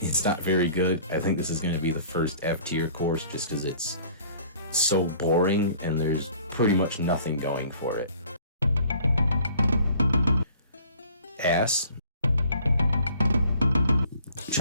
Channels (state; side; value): inverted; both; correlation -0.53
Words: not very good. I think this is going to be the first F tier course just because it's so boring and there's pretty much nothing going for it. Ass.